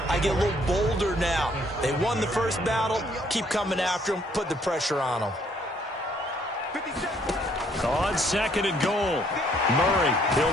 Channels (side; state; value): both; normal; correlation 0.65